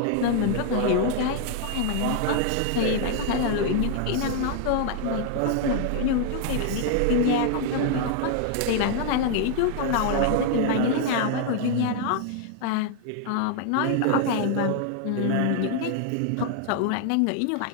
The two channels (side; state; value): both; different; correlation 0.00